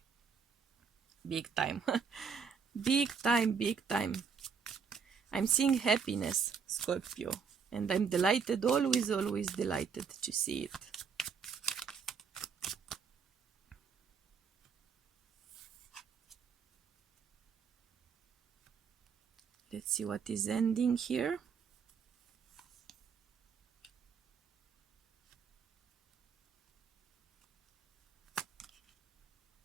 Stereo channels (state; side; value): quieter; left; 6.1 dB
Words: Big time. Big time, big time. I'm seeing happiness, Scorpio, and I'm delighted, always, always delighted to see it. Let's see what is ending here.